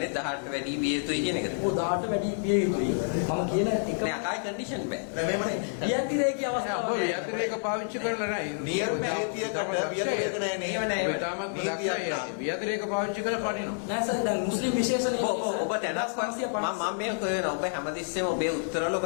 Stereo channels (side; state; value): right; silent; digital silence